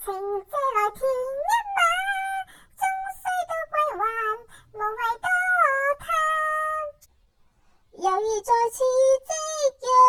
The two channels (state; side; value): identical; both; correlation 1.00